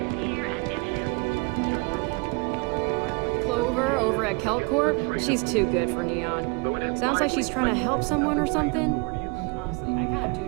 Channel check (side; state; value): left; quieter; 31.4 dB